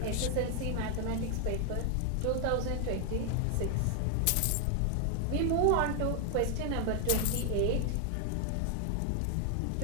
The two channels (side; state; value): both; different; correlation 0.00